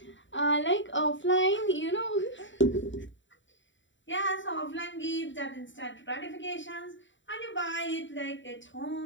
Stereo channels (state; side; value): late; right; 0.54 ms